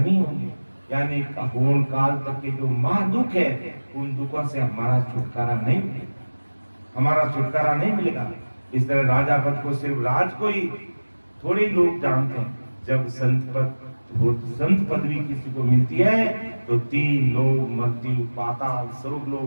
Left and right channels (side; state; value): both; inverted; correlation -1.00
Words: होंगे। यानी होन काल तक के जो महादुख है, उन दुखों से हमारा छुटकारा नहीं मिलेगा, हमारा छुटकारा नहीं मिलेगा। इस तरह राजा पद को सिर्फ राज को ही थोड़े लोग जानते हैं। जब संत पदवी किसी को मिलती है तो 3 लोग, मृत्यु, पाताल, स्वर्ग